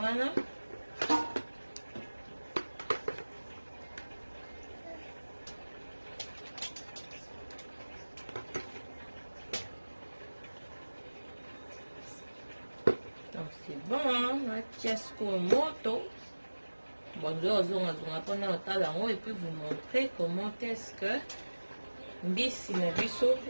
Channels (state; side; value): inverted; both; correlation -1.00